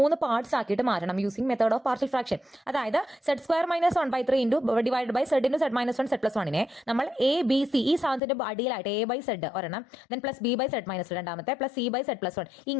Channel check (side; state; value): right; drops out; at 8.2 s